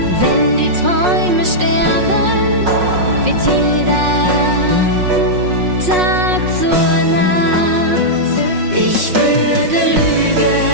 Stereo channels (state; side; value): late; left; 5.5 ms